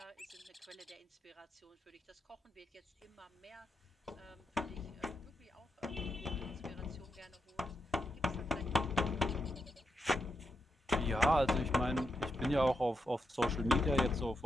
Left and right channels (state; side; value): normal; both; correlation 0.85